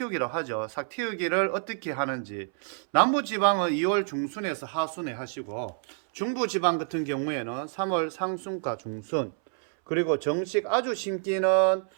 하죠. 삭 틔우기를 어떻게 하는지, 남부지방은 2월 중순에서 하순에 하시고, 중부지방 같은 경우에는 3월 상순과 중순, 그리고 정식 아주 심기는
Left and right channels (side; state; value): left; silent; 59 dB below the other